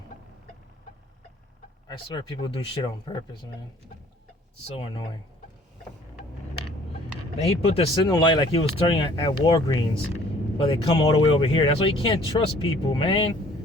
I swear people do shit on purpose, man. It's so annoying. Then he put the signal light like he was turning at Walgreens, but they come all the way over here. That's why you can't trust people, man.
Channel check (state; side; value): normal; both; correlation 0.55